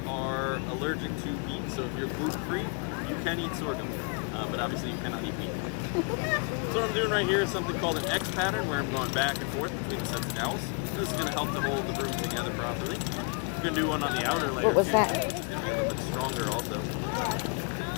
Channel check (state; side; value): quieter; right; 34.9 dB